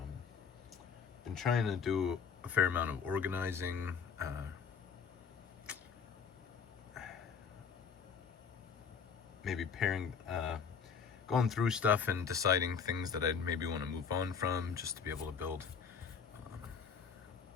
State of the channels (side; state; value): right; quieter; 6.5 dB